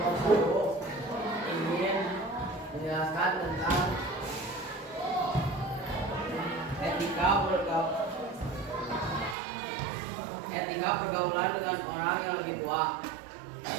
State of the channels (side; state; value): left; drops out; at 9.3 s